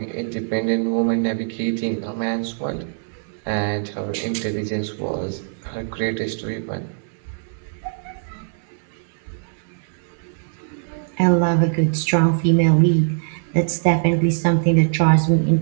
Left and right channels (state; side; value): silent; left; digital silence